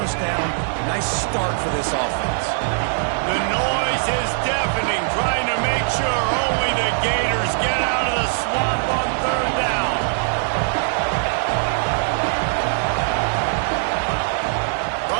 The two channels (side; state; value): left; silent; 65 dB below the other